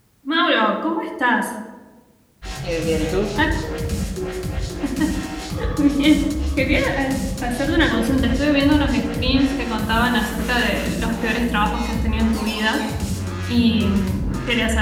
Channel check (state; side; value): identical; both; correlation 1.00